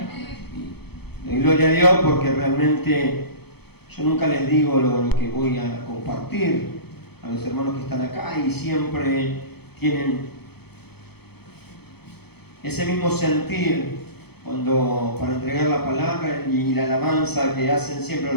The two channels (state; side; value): late; right; 0.97 ms